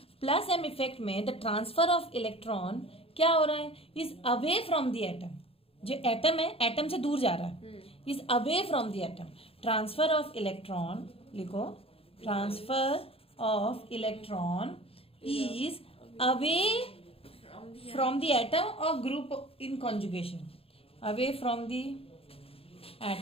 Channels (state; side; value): late; right; 0.27 ms